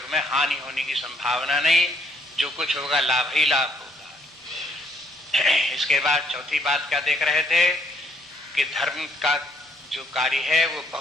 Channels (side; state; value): both; normal; correlation 0.68